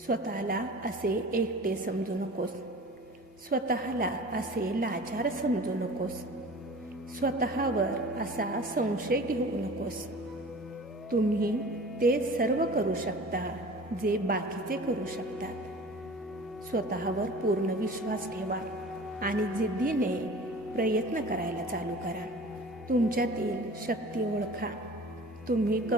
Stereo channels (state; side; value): normal; both; correlation 0.41